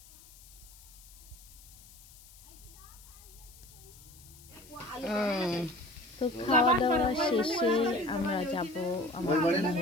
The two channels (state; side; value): noise; left; hiss, 21 dB below the sound